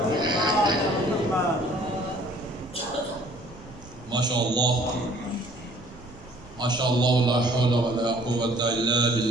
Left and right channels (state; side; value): noise; right; rumble, 20 dB below the sound